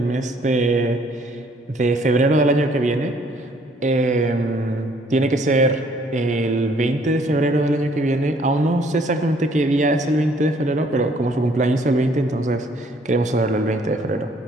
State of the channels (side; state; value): both; normal; correlation 0.62